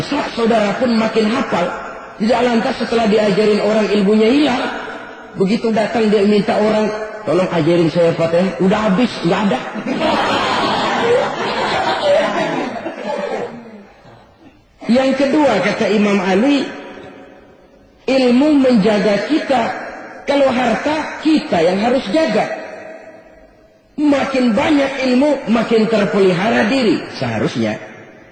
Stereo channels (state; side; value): identical; both; correlation 1.00